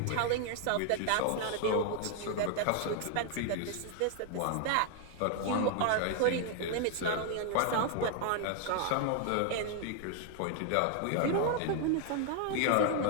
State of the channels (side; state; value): both; different; correlation 0.00